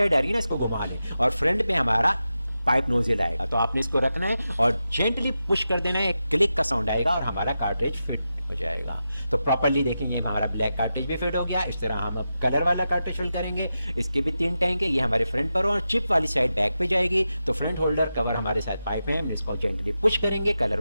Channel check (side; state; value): both; inverted; correlation -0.90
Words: आ रही है ना, इसको घुमा लें और फ्रंट पे हमारा पाइप नोजल आएगा। तो आपने इसको रखना है और जेंटली पुश कर देना है, एक क्लिक का साउंड आएगा और हमारा कार्ट्रिज फिट हो जाएगा। तो प्रॉपर्ली देखेंगे हमारा ब्लैक कार्ट्रिज भी फिट हो गया। इस तरह हम अब कलर वाला कार्ट्रिज फिल करेंगे। इसके भी 3 टैंक है, ये हमारे फ्रंट पर और चिप वाली साइड बैक पे जाएगी। तो फ्रंट होल्डर कवर हमारे साथ पाइप है, हम इसको जेंटली पुश करेंगे, कलर